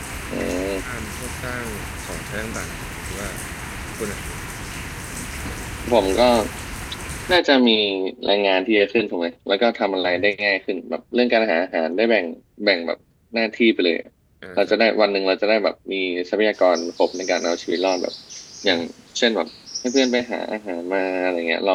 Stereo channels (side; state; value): both; identical; correlation 1.00